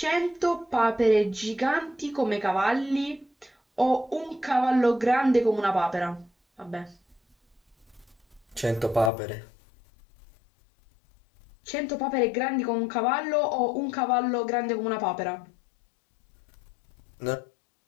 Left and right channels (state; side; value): drops out; right; at 9.1 s